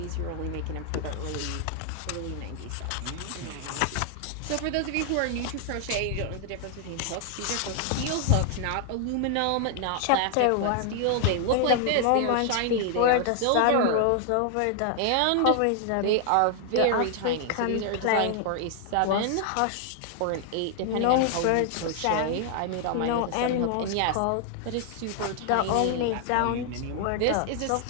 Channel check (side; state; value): both; different; correlation 0.00